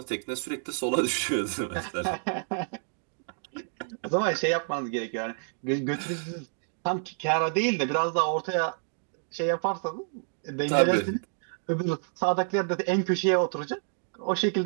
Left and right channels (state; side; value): silent; left; digital silence